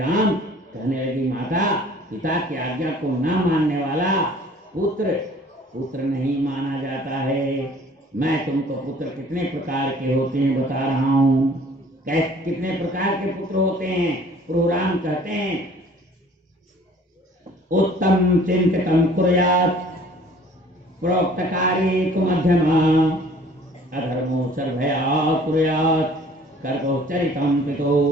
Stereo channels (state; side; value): normal; both; correlation 0.52